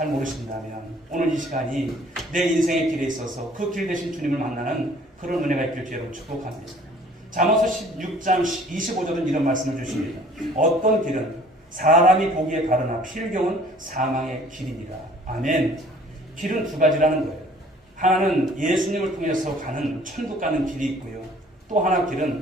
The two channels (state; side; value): normal; both; correlation 0.54